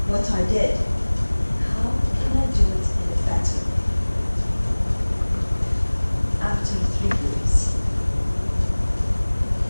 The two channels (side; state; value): both; inverted; correlation -1.00